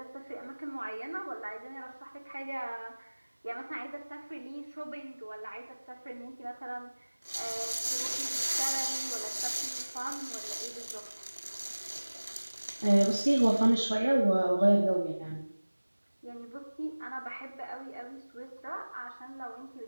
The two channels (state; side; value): inverted; both; correlation -1.00